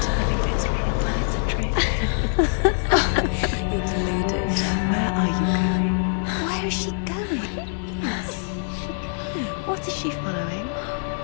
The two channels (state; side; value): silent; right; digital silence